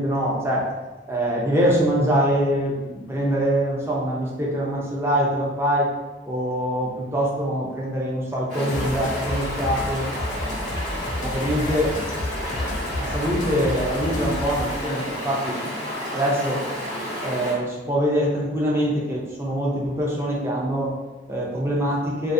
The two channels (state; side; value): normal; both; correlation 0.46